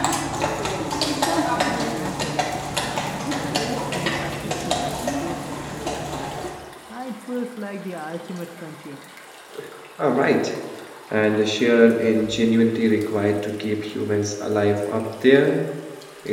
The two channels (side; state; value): both; identical; correlation 1.00